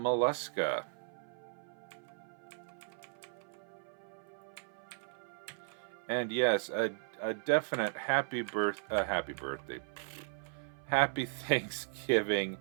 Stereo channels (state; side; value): silent; left; 53 dB below the other